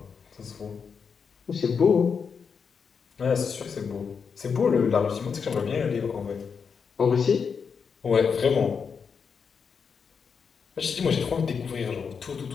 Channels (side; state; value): right; quieter; 6.1 dB